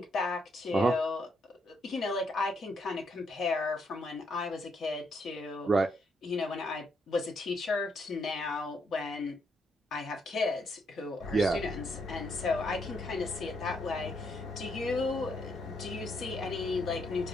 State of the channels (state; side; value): normal; both; correlation 0.76